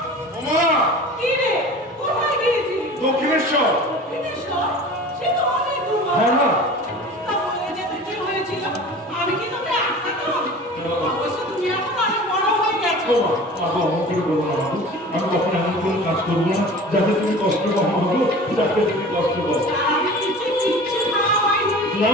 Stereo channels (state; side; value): normal; both; correlation 0.39